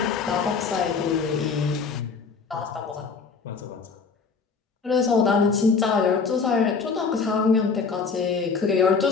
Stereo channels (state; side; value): quieter; right; 5.1 dB